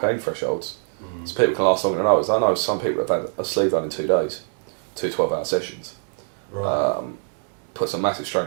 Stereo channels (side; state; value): left; silent; digital silence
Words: thresholds. So people can last longer than others. I know some people have had a sleeve done in 2 days, 2 12-hour sessions. Right. Puts a massive strain